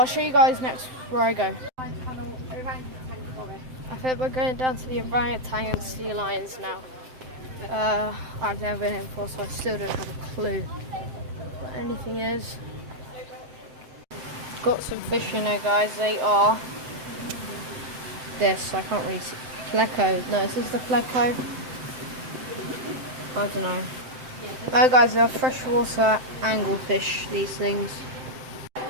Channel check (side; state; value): left; late; 7.8 ms